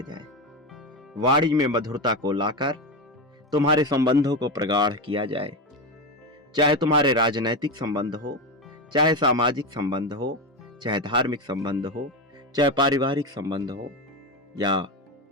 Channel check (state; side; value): normal; both; correlation 0.16